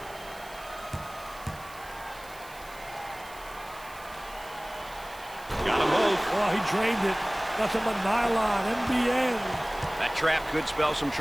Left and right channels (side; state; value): right; noise; hiss, 20 dB below the sound